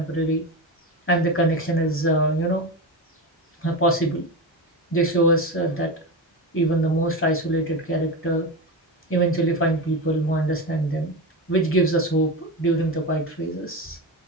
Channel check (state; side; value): normal; both; correlation 0.20